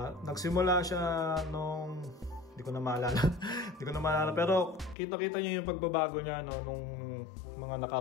nagsimula siya nung hindi ko na maalala pero kita-kita niyo yung pagbabago niya, no, nung mga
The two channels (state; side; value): drops out; right; at 5.0 s